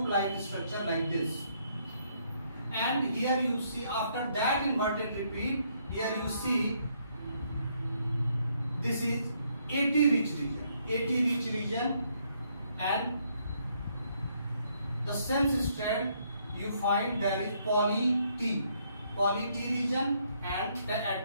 like structure like this. And here you see, after that inverted repeat, here you see this is AT rich region, and the sense strand you find there is poly T region, and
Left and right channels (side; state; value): both; inverted; correlation -0.71